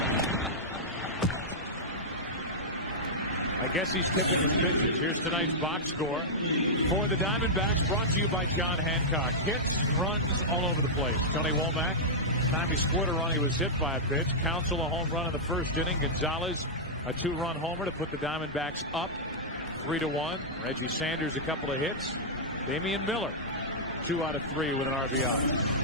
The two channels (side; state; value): both; normal; correlation -0.08